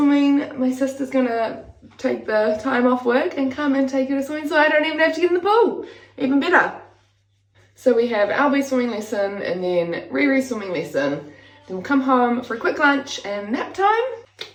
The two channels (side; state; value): both; identical; correlation 1.00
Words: my sister's gonna take the time off work and come and take her to swimming, so I don't even have to get in the pool. Even better. So we have Albie swimming lesson and then Riri swimming lesson. Then we'll come home for a quick lunch and nap time.